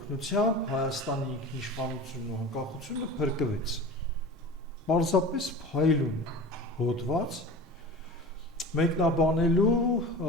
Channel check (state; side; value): normal; both; correlation 0.35